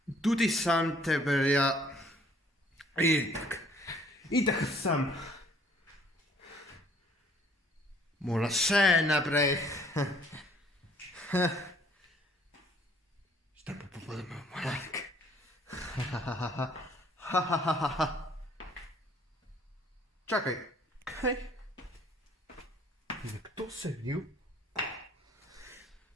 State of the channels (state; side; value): normal; both; correlation 0.59